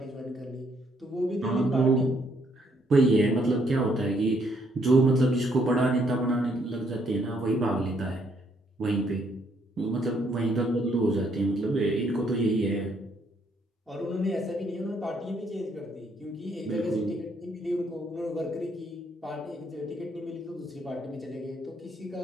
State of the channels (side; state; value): both; normal; correlation 0.71